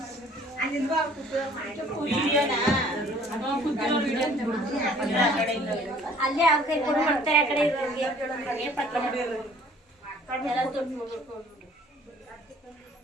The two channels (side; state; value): both; normal; correlation 0.54